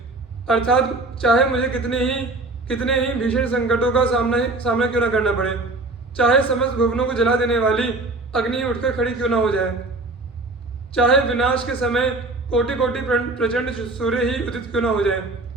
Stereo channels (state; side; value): quieter; left; 3.1 dB